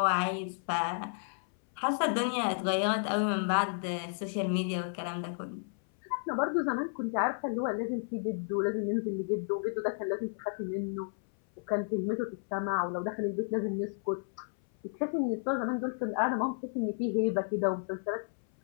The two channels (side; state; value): right; silent; 56 dB below the other